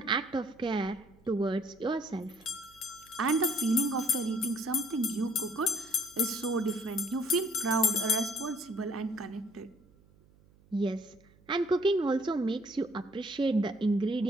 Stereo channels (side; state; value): right; noise; hum, 29 dB below the sound